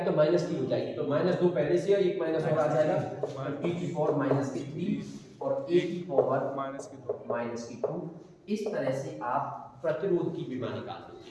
तो -T हो जाएगी, तो -2 पहले से है, एक माइनस और आ जाएगा, T⁻³ और A⁻²। इस तरह से आप प्रतिरोध की विमा निकाल दोगे।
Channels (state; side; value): identical; both; correlation 1.00